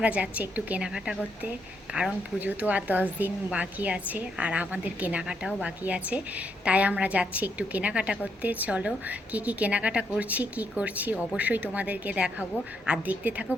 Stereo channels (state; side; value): normal; both; correlation 0.77